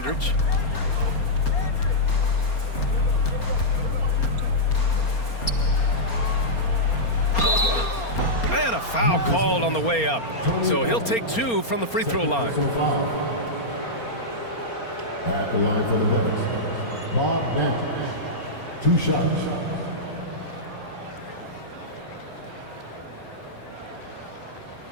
And a foul called on the way up. So he'll take 2 from the free throw line. At the line for the Bucks, Bob Dandridge, 2 shots.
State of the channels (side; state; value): right; late; 4.3 ms